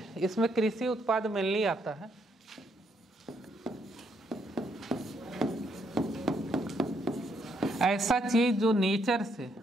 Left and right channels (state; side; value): normal; both; correlation 0.74